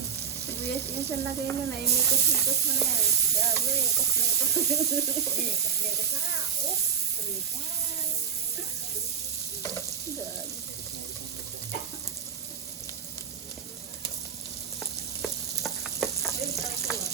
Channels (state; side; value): quieter; left; 7.0 dB